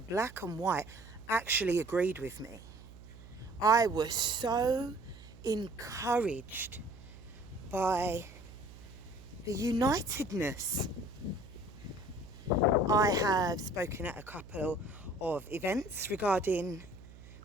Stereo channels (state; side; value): noise; right; hum, 18 dB below the sound